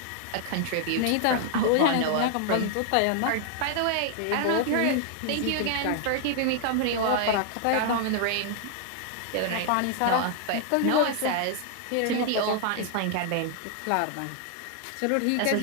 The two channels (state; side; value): different; both; correlation 0.00